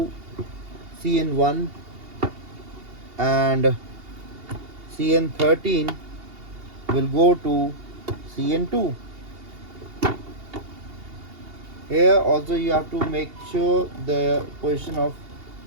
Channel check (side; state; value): left; late; 2.8 ms